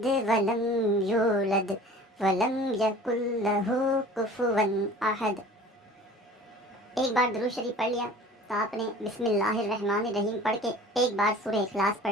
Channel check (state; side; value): normal; both; correlation 0.44